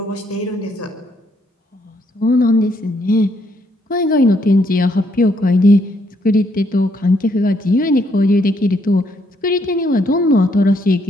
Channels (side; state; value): both; normal; correlation 0.72